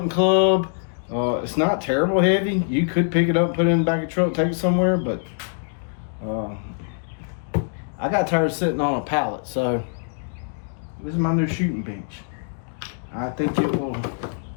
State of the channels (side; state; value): right; silent; digital silence